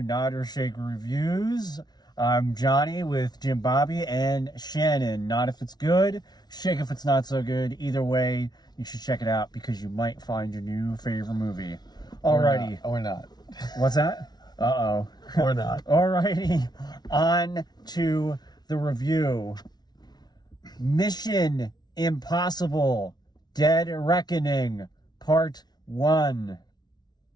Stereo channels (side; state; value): right; late; 0.19 ms